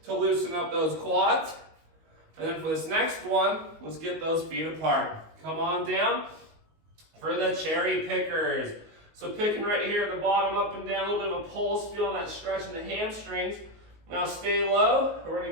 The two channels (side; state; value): left; late; 19 ms